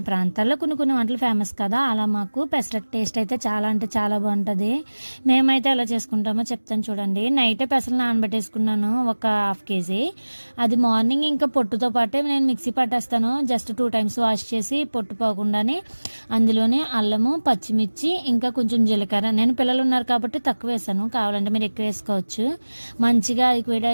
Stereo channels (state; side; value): inverted; both; correlation -1.00